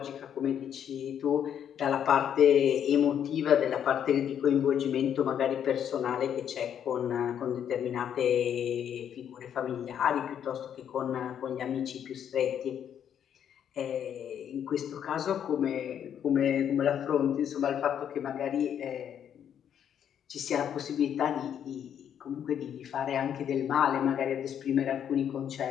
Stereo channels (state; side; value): quieter; right; 9.1 dB